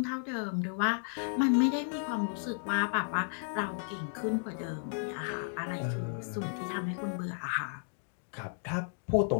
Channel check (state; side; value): silent; right; digital silence